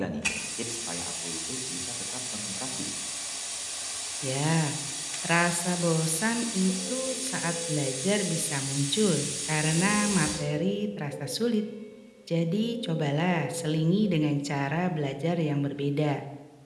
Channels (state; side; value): identical; both; correlation 1.00